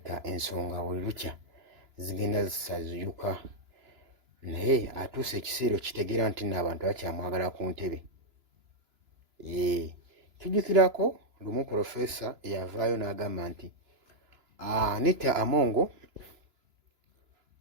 ensonga buli lukya zigenda zisaziyuka, naye atuuse ekiseera okitegeera nti nno abantu bakyamwagala ku ntebe. Tujjukirako lumu Pulofeesa eyavaayo n'agamba nti Anita Among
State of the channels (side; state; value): left; late; 3.0 ms